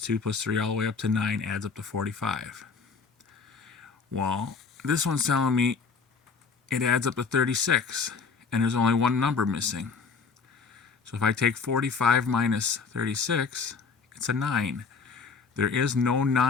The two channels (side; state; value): right; quieter; 5.1 dB